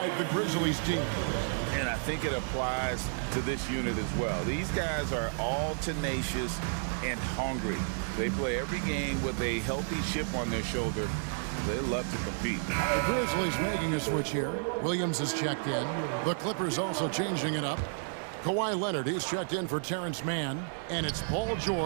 the Grizzlies team. And I think it applies to this unit as well. These guys are all tenacious and hungry. They play every game with a healthy chip on their shoulder. They love to compete. The Grizzlies making a switch here. Williams is checked in. The Clippers also changing it up. Kawhi Leonard, he's checked in for Terrence Mann. And it's Paul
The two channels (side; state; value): left; silent; 57 dB below the other